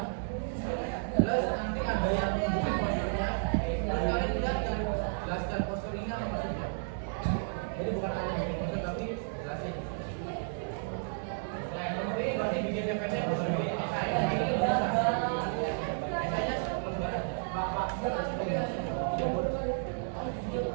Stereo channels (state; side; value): silent; left; digital silence